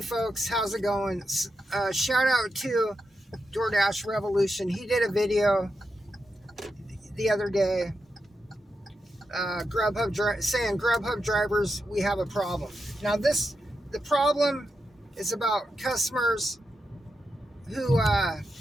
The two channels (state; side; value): normal; both; correlation 0.87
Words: folks, how's it going? Shout out to DoorDash Revolution. He did a video the other day, saying Grubhub drivers, we have a problem. Now the problem is about customers who